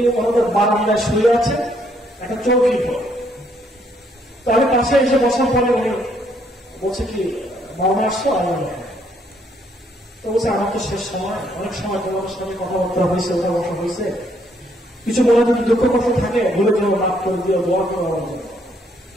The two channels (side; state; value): both; normal; correlation 0.70